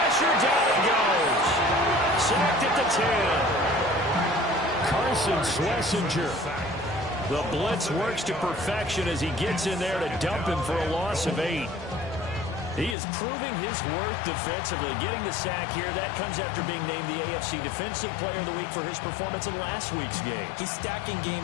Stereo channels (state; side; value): drops out; right; at 13.0 s